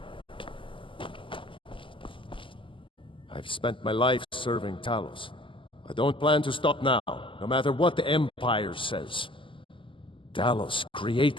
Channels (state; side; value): late; right; 0.25 ms